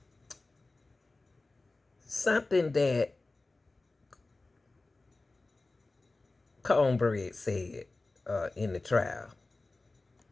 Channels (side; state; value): right; quieter; 3.3 dB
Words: something that Cornbread said in the trial